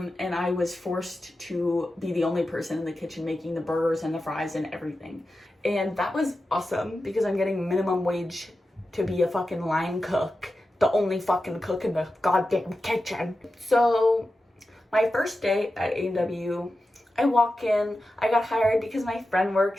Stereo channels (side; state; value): both; normal; correlation 0.92